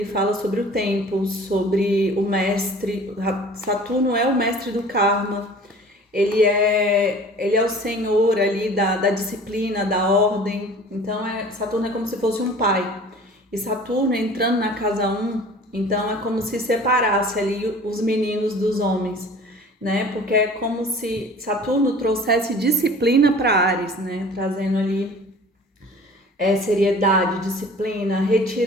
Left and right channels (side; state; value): both; normal; correlation 0.45